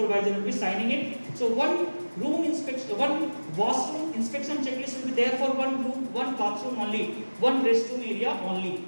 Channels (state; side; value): inverted; both; correlation -1.00